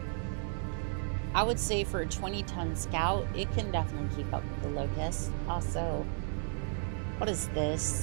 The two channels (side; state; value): left; silent; 55 dB below the other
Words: I would say for a 20-ton scout, it can definitely keep up with the Locust. Also, what is